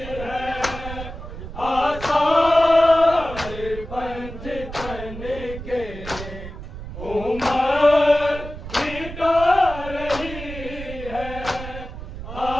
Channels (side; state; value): right; noise; rumble, 11 dB below the sound